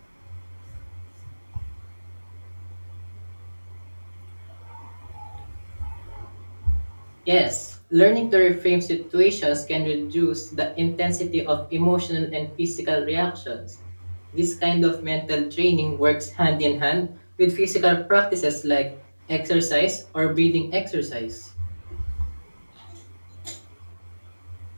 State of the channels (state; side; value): inverted; both; correlation -1.00